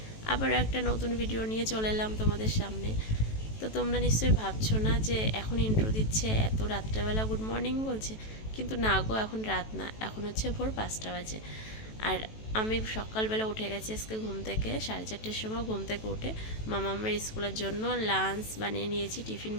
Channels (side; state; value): right; late; 18 ms